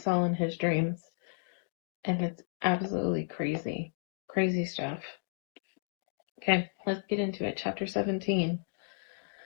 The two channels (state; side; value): silent; right; digital silence